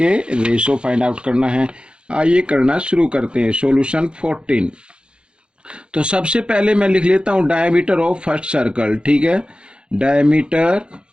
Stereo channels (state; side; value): late; left; 0.053 ms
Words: रेशो फाइंड आउट करना है। आइए करना शुरू करते हैं। सॉल्यूशन 14। तो सबसे पहले मैं लिख लेता हूं डायमीटर ऑफ फर्स्ट सर्कल। ठीक है, diameter